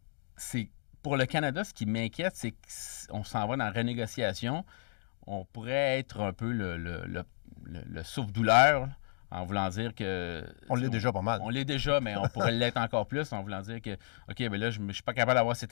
Pour le Canada, ce qui m'inquiète, c'est qu'on s'en va dans la renégociation. On pourrait être un peu le souffle-douleur, en voulant dire que... On l'est déjà pas mal. On l'est déjà, mais on pourrait l'être encore plus en voulant dire que, OK, ben là, je ne suis pas capable d'avoir ces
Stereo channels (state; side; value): silent; right; digital silence